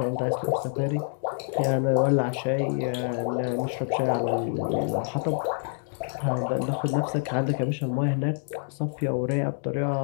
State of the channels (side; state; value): right; silent; 60 dB below the other